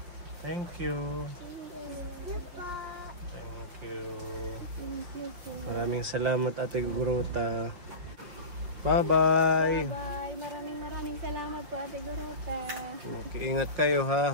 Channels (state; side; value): late; left; 5.7 ms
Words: Thank you. Thank you po. Thank you. Thank you po. Maraming salamat Ate Igorota. Bye-bye. Bye. Maraming salamat po, Ate Gorota. Okay, ingat kayo